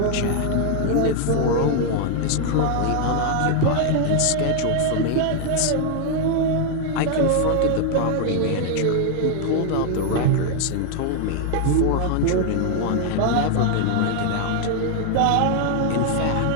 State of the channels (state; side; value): different; both; correlation 0.00